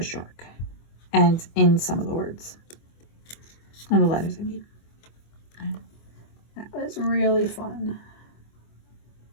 shark and in some of the words and the letters, I mean. And that was really fun.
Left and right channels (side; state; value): right; late; 24 ms